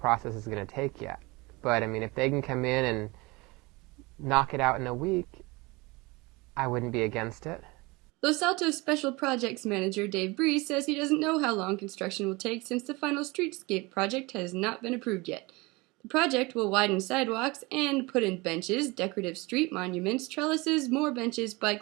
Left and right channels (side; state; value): left; quieter; 24.4 dB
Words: is going to take yet. But I mean, if they can come in and knock it out in a week, I wouldn't be against it. Los Altos Special Projects Manager Dave Breeze says he doesn't know how long construction will take since the final streetscape project has not been approved yet. The project will widen sidewalks and put in benches, decorative street monuments, trellises, more benches,